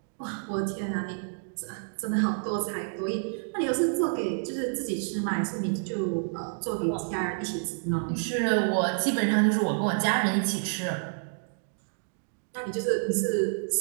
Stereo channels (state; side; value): silent; left; digital silence